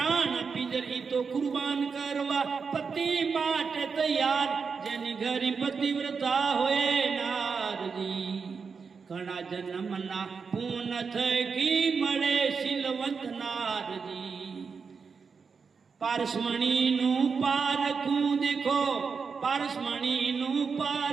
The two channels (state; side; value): quieter; left; 5.5 dB